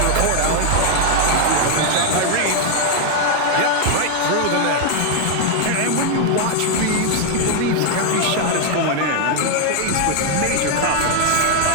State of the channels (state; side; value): different; both; correlation 0.00